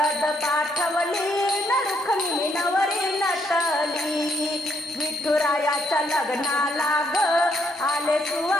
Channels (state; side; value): normal; both; correlation 0.72